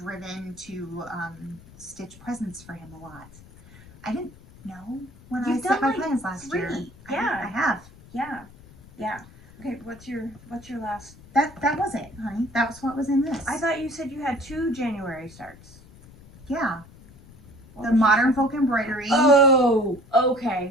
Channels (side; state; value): left; noise; rumble, 22 dB below the sound